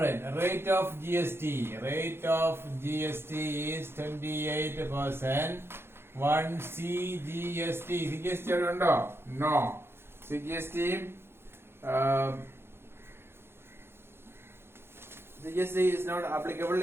Rate of GST is 28%. One CGST. CGST അവിടെ ഉണ്ടോ? No. CGST is not applicable.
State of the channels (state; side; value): late; left; 0.11 ms